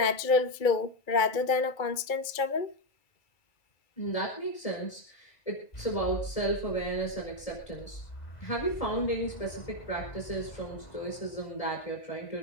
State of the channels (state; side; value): late; right; 2.2 ms